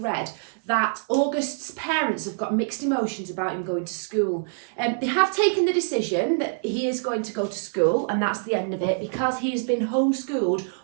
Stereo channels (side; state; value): left; silent; digital silence